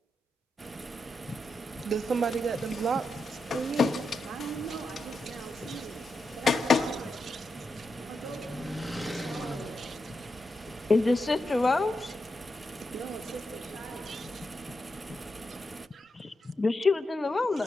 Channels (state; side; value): normal; both; correlation 0.86